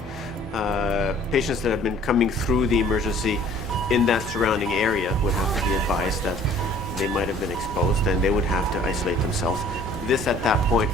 Patients that have been coming through the emergency in that surrounding area would have to be advised that they might have been exposed and they would have to isolate themselves. This, at that point,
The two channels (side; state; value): both; normal; correlation 0.53